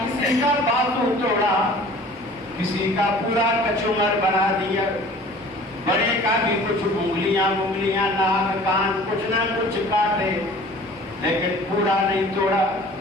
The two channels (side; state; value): both; normal; correlation 0.47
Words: کا بازو توڑا, کسی کا پورا کچمر بنا دیا, بڑے کا بھی کچھ انگلیاں ناک کان کچھ نہ کچھ کاٹے, لیکن پورا نہیں توڑا.